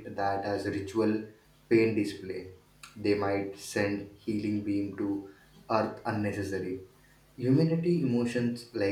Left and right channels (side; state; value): both; identical; correlation 1.00